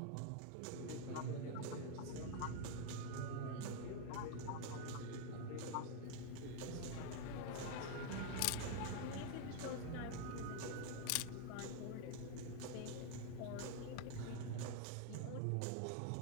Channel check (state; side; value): different; both; correlation 0.01